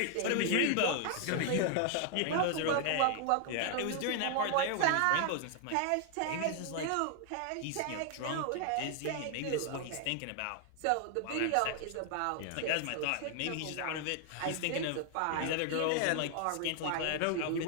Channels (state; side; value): different; both; correlation 0.00